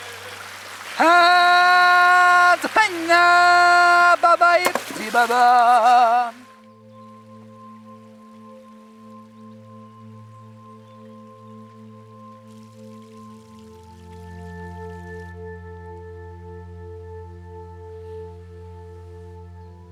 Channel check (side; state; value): both; identical; correlation 1.00